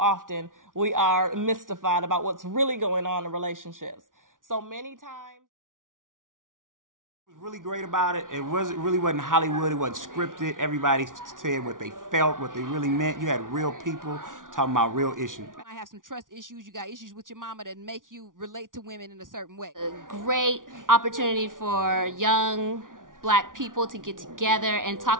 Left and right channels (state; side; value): late; left; 0.88 ms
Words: often we are mystified about what's really going on in relationships. So many times. What was really great about it, really wasn't Hollywood, it wasn't scripted. Everybody said what they felt, what they really meant. You had real people talking about real issues. You might have some trust issues, you got issues with your mama that make you relate to women in a certain way. A great opportunity for young Black people to get together and